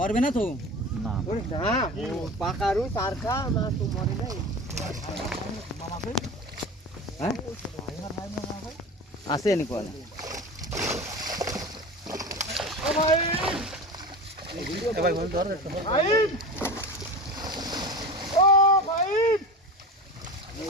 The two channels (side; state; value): both; normal; correlation 0.30